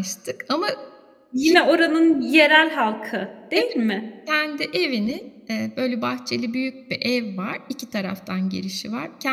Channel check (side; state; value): both; identical; correlation 1.00